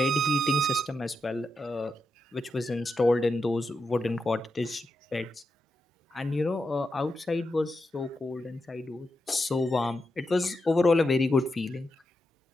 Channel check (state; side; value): normal; both; correlation 0.86